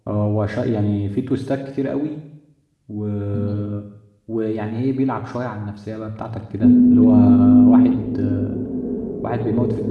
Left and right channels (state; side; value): identical; both; correlation 1.00